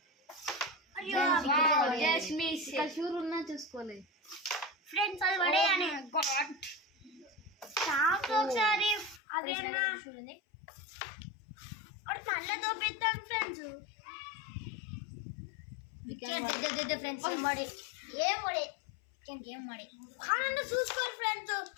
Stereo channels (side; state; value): right; drops out; at 9.2 s